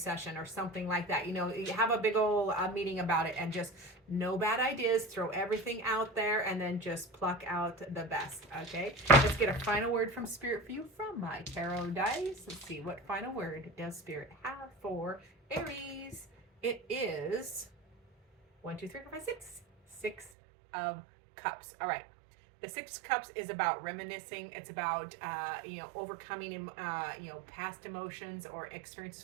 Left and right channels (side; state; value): left; drops out; at 20.3 s